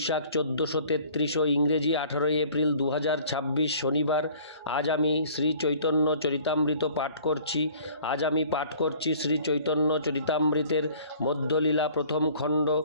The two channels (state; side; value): inverted; both; correlation -0.51